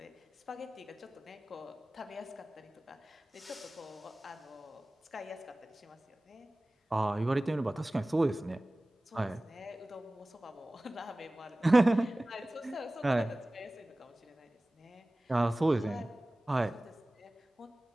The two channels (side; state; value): both; normal; correlation 0.98